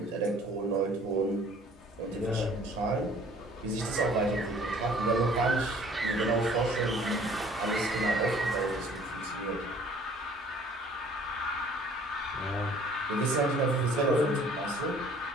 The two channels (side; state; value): both; normal; correlation 0.54